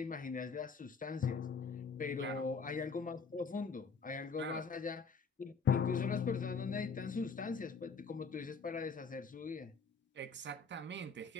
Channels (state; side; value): quieter; right; 5.0 dB